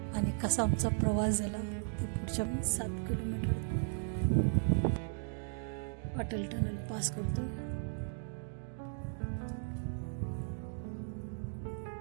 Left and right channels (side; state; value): left; silent; digital silence